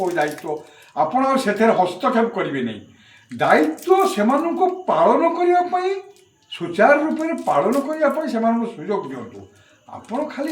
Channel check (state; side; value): identical; both; correlation 1.00